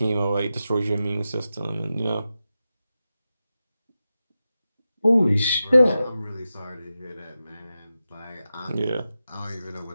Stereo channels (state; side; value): inverted; both; correlation -0.92